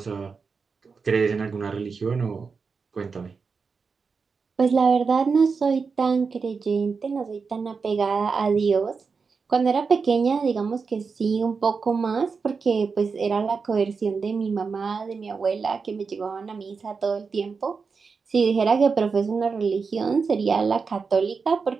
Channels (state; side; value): quieter; left; 5.1 dB